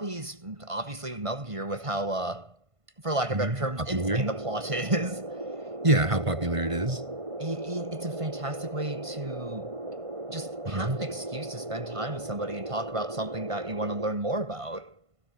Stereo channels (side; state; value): left; late; 1.5 ms